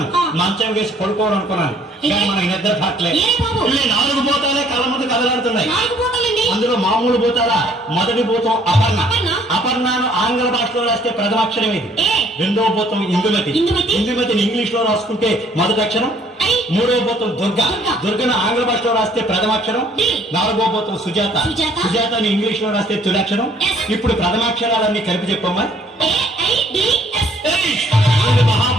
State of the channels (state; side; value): normal; both; correlation 0.60